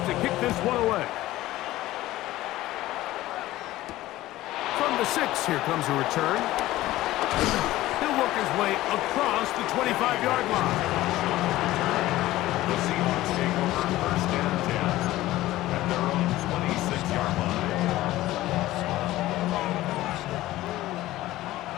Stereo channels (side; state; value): right; quieter; 16.2 dB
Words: to kick this one away. From the 6, here comes a return. He'll work his way across the 25-yard line. The Seahawks take over first and 10 at their own 26-yard line.